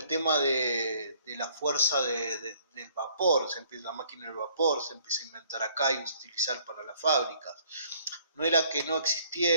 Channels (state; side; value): inverted; both; correlation -0.61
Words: tema de la fuerza del vapor, la máquina del vapor se empieza a inventar acá y utilizar para las fábricas. No era que no